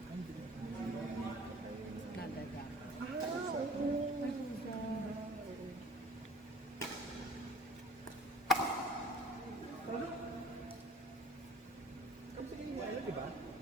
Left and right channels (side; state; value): both; normal; correlation 0.47